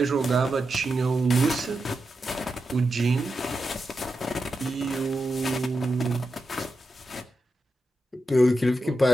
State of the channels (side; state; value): both; normal; correlation 0.88